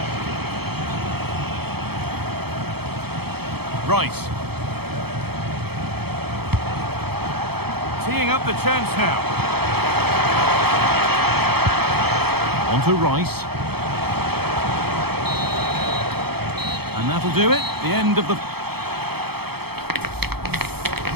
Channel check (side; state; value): left; late; 0.96 ms